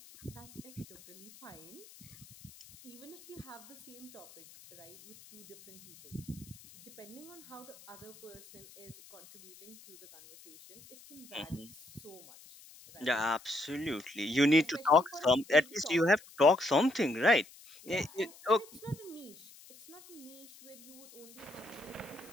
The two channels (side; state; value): left; noise; hiss, 21 dB below the sound